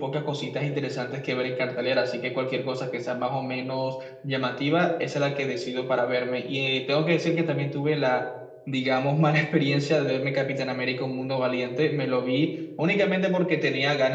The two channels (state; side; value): identical; both; correlation 1.00